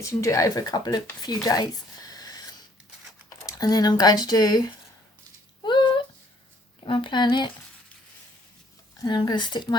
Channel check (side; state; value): both; normal; correlation 0.63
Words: so you can do it over a few days. And then I'm going to do, get my planet, and I'm going to stick